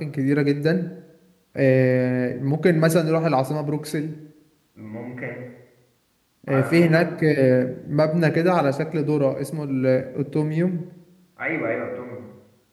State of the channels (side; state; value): both; identical; correlation 1.00